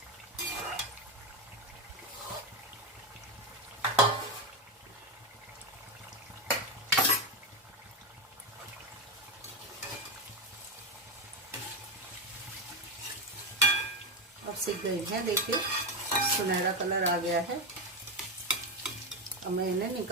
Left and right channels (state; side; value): normal; both; correlation 0.12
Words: अब सिक गई है, देखिए सुनहरा कलर आ गया है। अब मैं इन्हें